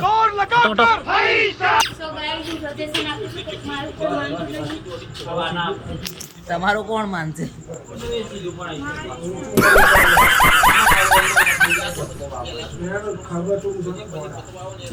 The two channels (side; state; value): both; identical; correlation 1.00